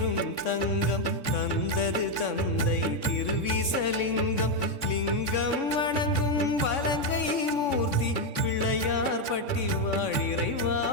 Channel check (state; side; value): late; right; 3.6 ms